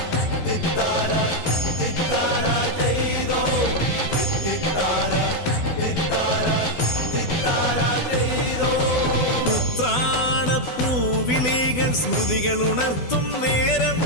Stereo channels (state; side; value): late; right; 12 ms